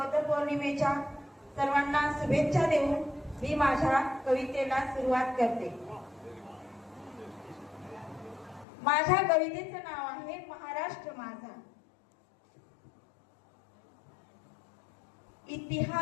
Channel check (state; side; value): drops out; right; at 8.7 s